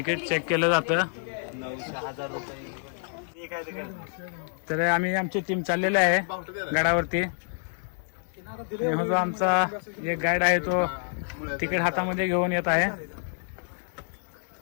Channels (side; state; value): right; silent; 57 dB below the other